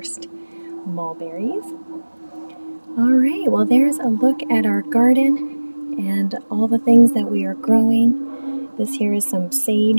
mulberries. All right, well, there's a look at our garden and all the things that we are growing. This here is some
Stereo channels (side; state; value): both; inverted; correlation -1.00